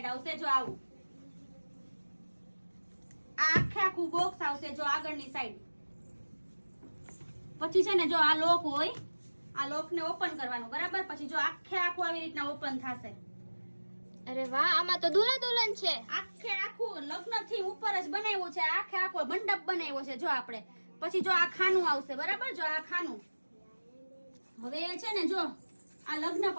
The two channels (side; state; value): both; inverted; correlation -1.00